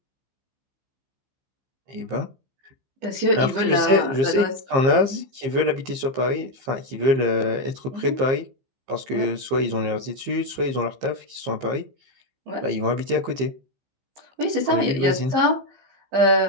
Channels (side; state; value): left; late; 15 ms